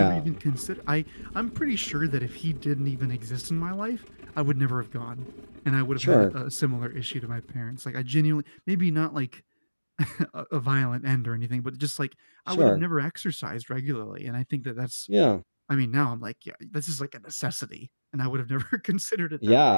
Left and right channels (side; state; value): both; inverted; correlation -1.00